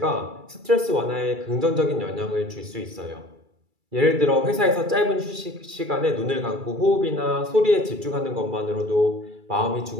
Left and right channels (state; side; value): late; left; 2.3 ms